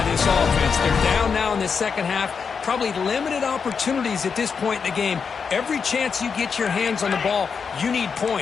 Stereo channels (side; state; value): right; quieter; 5.9 dB